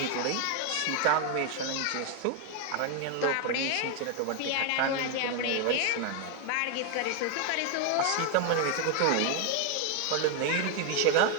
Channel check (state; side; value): different; both; correlation 0.01